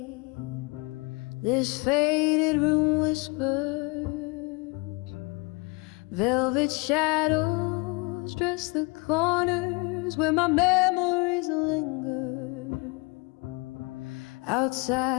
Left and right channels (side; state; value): right; quieter; 27.7 dB